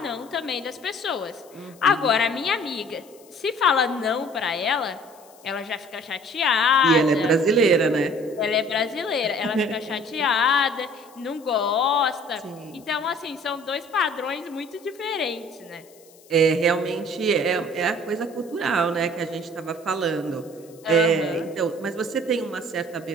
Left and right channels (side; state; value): left; noise; hiss, 26 dB below the sound